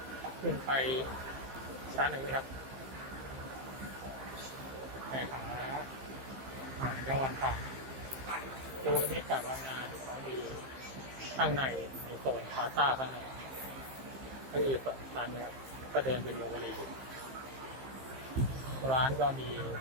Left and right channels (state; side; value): late; left; 15 ms